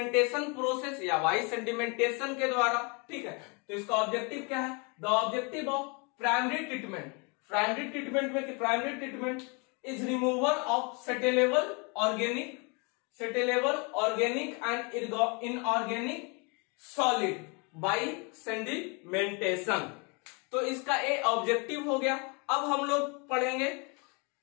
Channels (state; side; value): quieter; right; 31.9 dB